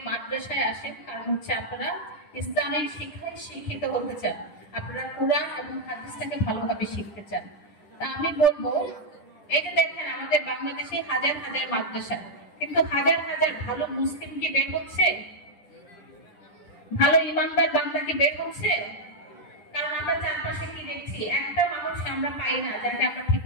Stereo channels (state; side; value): late; right; 10 ms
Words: মাদ্রাসায় আসেন, কারণ হচ্ছে আপনারা ইসলামিক শিক্ষায় শিক্ষিত হতে চান, আপনারা কুরআন এবং হাদিসটাকে ভালোভাবে শিখতে চান। তা আমি বলবো, এই যে দেখেন আমাদের বাংলাদেশে হাজার হাজার মাদ্রাসা, কিন্তু হাজার হাজার ভালো মুসলিম কি বের হচ্ছে? ভালো ইমানদার বান্দা কি বের হচ্ছে? কারণ আমরা চারপাশে কি দেখছি, একটা মানুষ আমরা পাই না যাকে আমরা